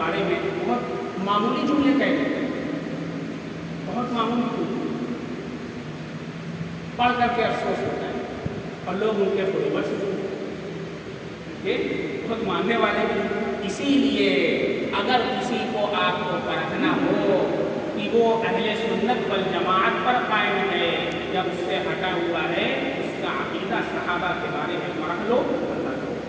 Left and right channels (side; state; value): both; identical; correlation 1.00